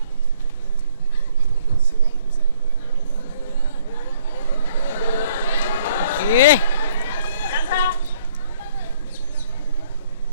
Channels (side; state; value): both; inverted; correlation -0.61